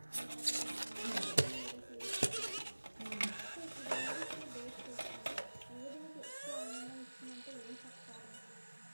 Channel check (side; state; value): both; inverted; correlation -1.00